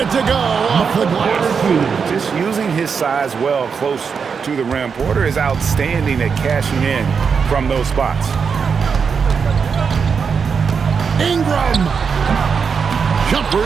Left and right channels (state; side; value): quieter; left; 6.0 dB